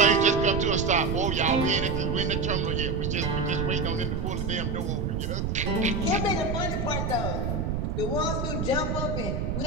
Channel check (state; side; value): noise; right; rumble, 1 dB below the sound